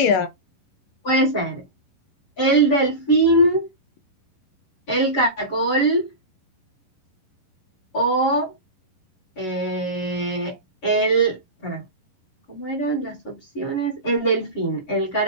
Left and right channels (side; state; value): right; late; 11 ms